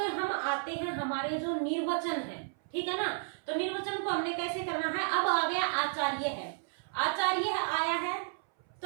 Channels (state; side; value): silent; left; 56 dB below the other